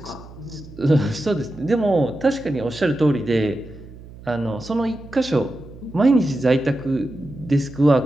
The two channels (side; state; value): right; noise; hum, 18 dB below the sound